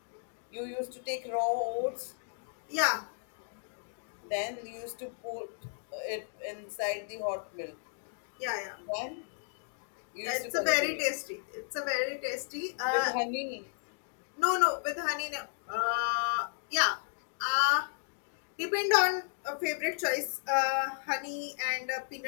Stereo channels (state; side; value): silent; right; digital silence